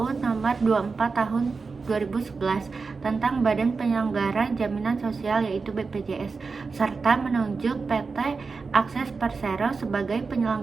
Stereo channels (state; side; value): quieter; left; 4.6 dB